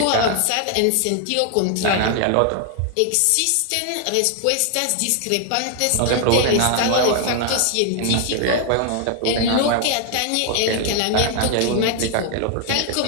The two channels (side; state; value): both; different; correlation 0.00